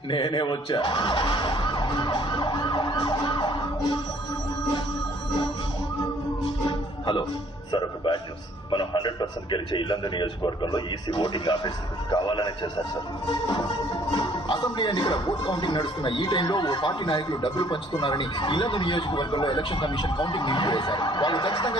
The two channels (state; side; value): normal; both; correlation 0.60